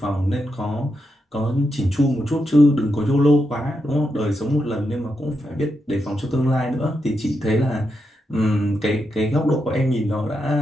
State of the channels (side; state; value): both; normal; correlation 0.84